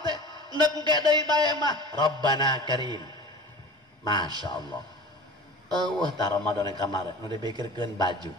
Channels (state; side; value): normal; both; correlation 0.38